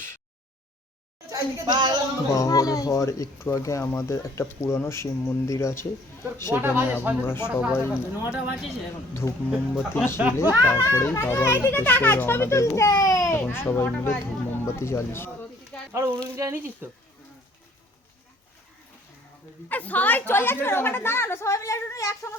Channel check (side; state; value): both; normal; correlation 0.58